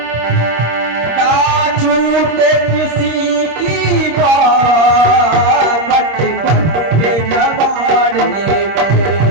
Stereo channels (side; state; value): left; late; 26 ms